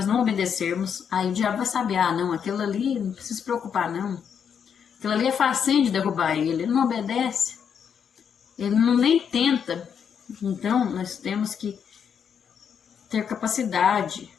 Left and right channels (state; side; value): quieter; right; 7.5 dB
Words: não obedecermos, aí o diabo vai saber, não, aquilo ali não precisa se preocupar não. Aquilo ali é facinho de derrubar ele não obedece, ele não nem tenta. Então nós temos que ter capacidade,